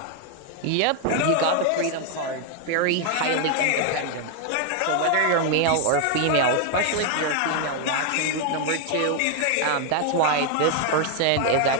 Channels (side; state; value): both; different; correlation 0.00